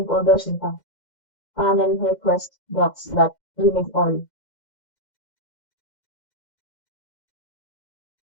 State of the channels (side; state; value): right; late; 2.1 ms